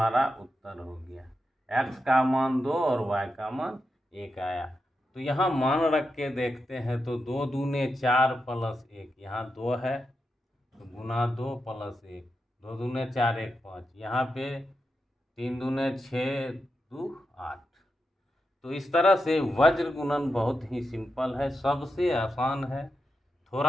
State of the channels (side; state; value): both; normal; correlation 0.87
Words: उत्तर हो गया। एक्स का मान 2 और वाई का मान 1 आया। तो यहाँ मान रख के देखते हैं तो 2 दूने 4 प्लस 1, यहाँ 2 है तो गुना 2 प्लस 1, 2 दूने 4 1 5, यहाँ पे 3 दूने 6 2 8। तो इस तरह से वज्र गुणन बहुत ही सिंपल है, सबसे आसान है।